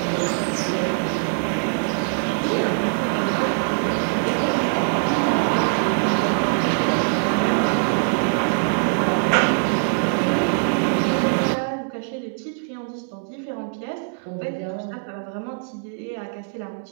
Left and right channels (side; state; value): left; silent; digital silence